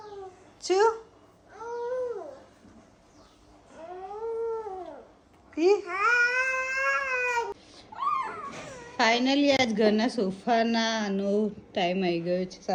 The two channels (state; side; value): identical; both; correlation 1.00